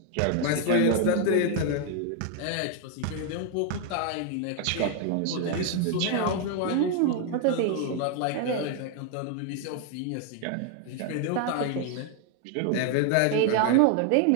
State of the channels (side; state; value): both; different; correlation 0.00